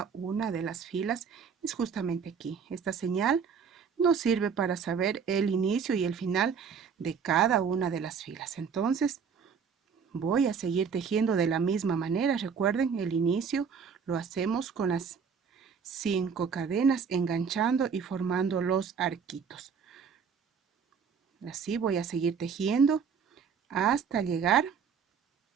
una de las filas. Es justamente aquí. Esta señal nos sirve para saber el inicio y el final de cada una de las filas. Entonces voy a seguir tejiendo de la misma manera. Recuerden, el inicio lo hacemos con las 5 cadenas, enganchando y formando los arquitos. Así voy a seguir tejiendo hasta llegar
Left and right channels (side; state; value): left; quieter; 6.4 dB